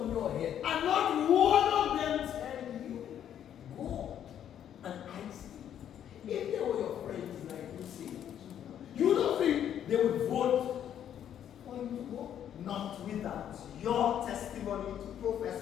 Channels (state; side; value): quieter; right; 9.9 dB